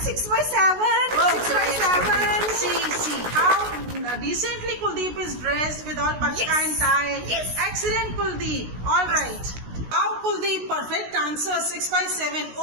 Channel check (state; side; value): late; left; 16 ms